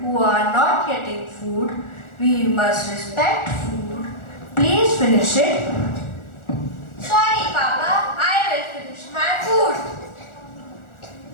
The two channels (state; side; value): late; right; 1.4 ms